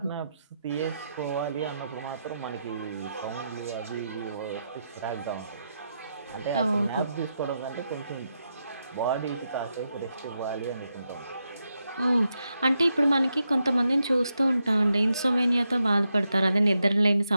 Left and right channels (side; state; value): both; inverted; correlation -0.85